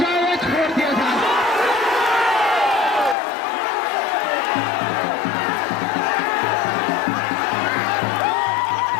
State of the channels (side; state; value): right; drops out; at 3.2 s